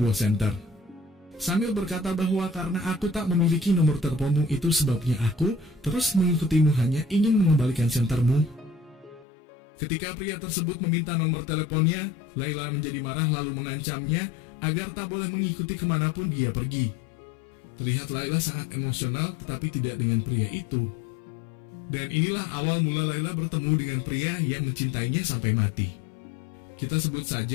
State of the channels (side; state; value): right; drops out; at 9.2 s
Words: senter. Sambil berkata bahwa karena aku tak memiliki nomor teleponmu itu sebabnya aku terus mengikutimu hanya ingin mengembalikan sentermu. Ketika pria tersebut meminta nomor teleponnya, Laila menjadi marah lalu mengancamnya agar tak boleh mengikuti kemanapun dia pergi. Terlihat Laila sangat emosional tetapi tidak dengan pria itu. Dan inilah awal mula Laila bertemu dengan pria yang mencintainya sampai mati. Kita sebut